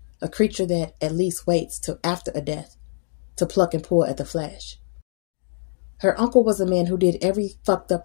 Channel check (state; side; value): silent; right; digital silence